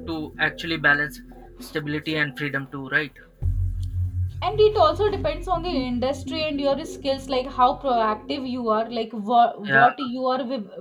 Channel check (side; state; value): both; identical; correlation 1.00